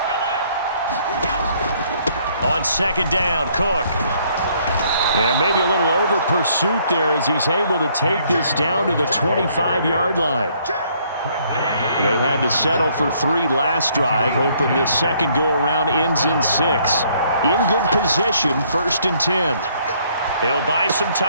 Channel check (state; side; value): inverted; both; correlation -0.65